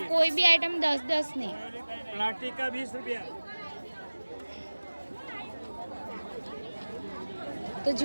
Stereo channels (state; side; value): inverted; both; correlation -1.00